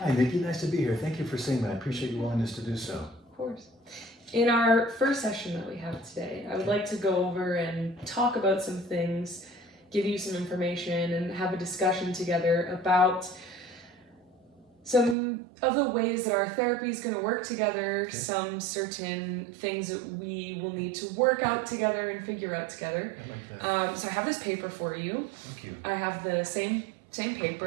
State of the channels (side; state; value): left; drops out; at 15.2 s